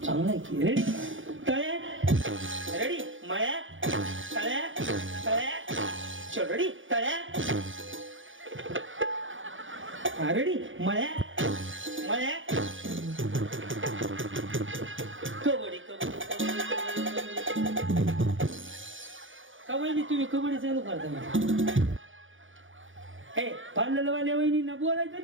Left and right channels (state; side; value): late; left; 0.57 ms